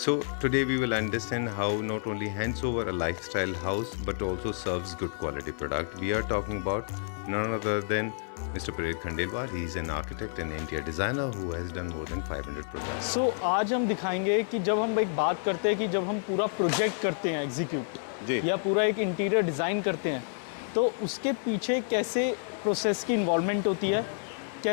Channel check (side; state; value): right; silent; 55 dB below the other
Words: So today we will understand how not only hands over a lifestyle house but also serves good quality product. We are talking about none other than Mr. Pradeep Khandelwal. He is an architect and interior designer who has done more than 500 projects. So आज हम दिखाएंगे कि जब हम एक बात करते हैं कि जब हम पूरा प्रोजेक्ट करते हैं एग्जीक्यूट या पूरा एक इंटीरियर डिज़ाइन करते हैं तो उसके पीछे कैसे प्रोसेस की इन्वॉल्वमेंट होती है,